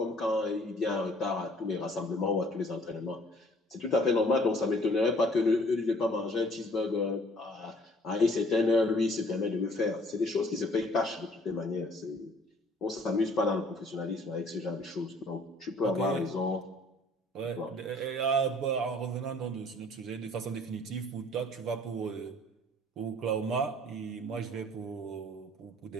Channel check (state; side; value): normal; both; correlation 0.56